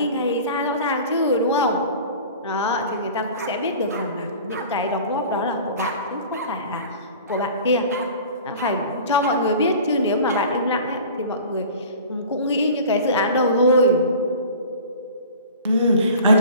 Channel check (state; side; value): inverted; both; correlation -0.42